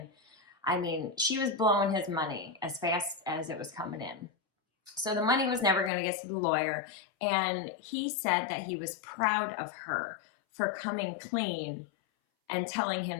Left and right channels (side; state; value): right; drops out; at 5.9 s